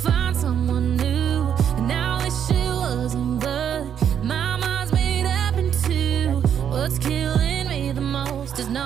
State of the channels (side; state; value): left; quieter; 8.7 dB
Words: someone new, and I wish it wasn't, but my mind's made up in two. What's killing me the most is